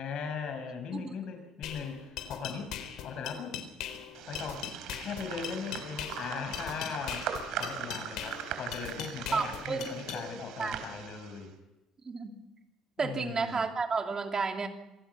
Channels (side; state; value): both; normal; correlation 0.63